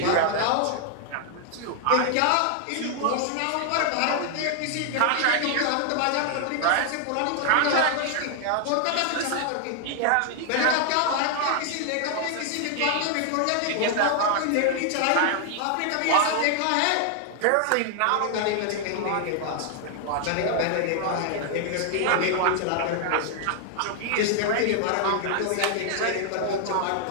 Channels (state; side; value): different; both; correlation 0.00